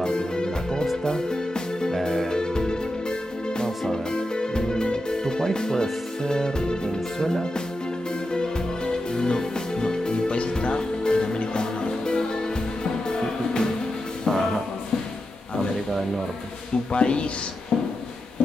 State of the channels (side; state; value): both; normal; correlation 0.89